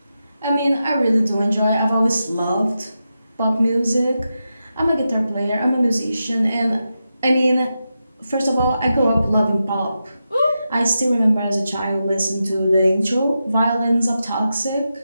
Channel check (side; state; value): both; inverted; correlation -0.89